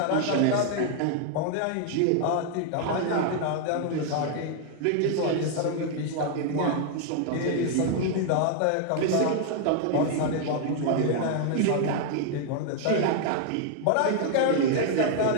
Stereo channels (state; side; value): different; both; correlation 0.00